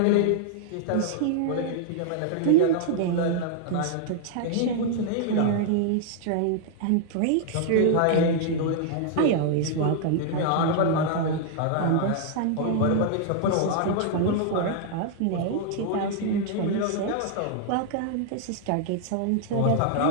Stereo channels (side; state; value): both; different; correlation -0.01